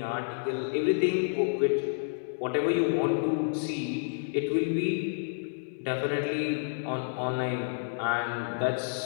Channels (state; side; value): silent; right; digital silence